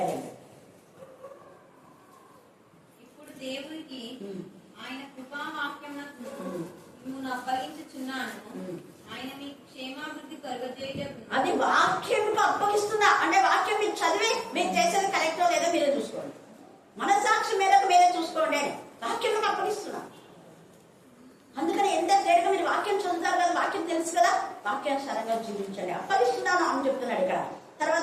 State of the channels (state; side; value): identical; both; correlation 1.00